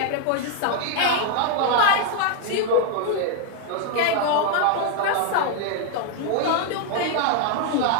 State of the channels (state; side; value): different; both; correlation 0.01